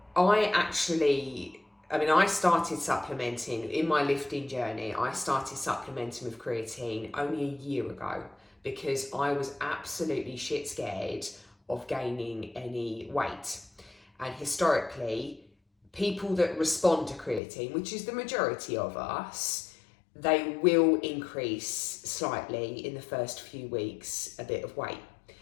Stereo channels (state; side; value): drops out; right; at 17.4 s